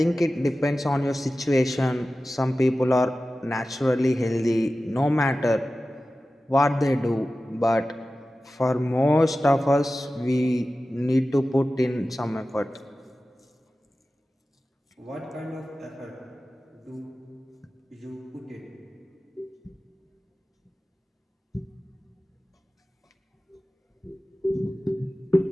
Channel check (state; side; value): normal; both; correlation 0.95